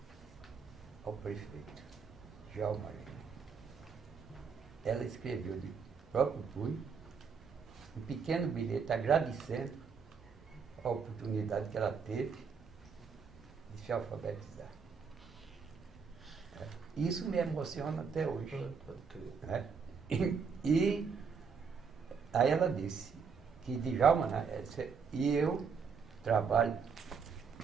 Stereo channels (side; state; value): left; quieter; 5.8 dB